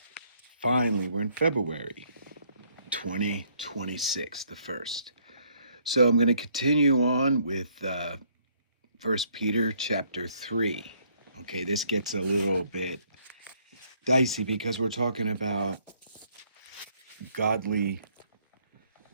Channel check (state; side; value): inverted; both; correlation -0.67